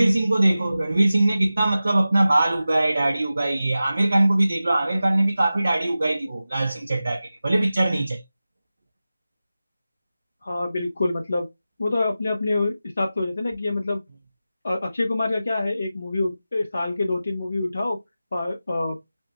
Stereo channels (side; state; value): both; inverted; correlation -0.95